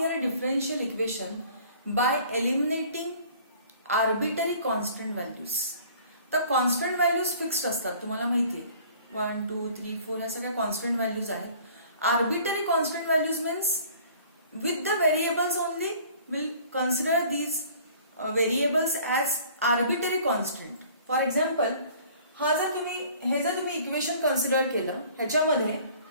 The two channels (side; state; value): both; inverted; correlation -0.51